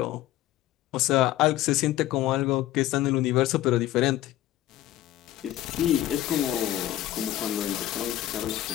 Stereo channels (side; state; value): right; quieter; 14.1 dB